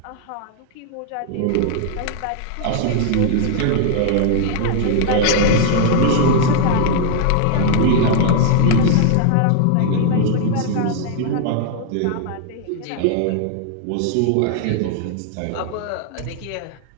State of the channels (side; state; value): both; different; correlation 0.00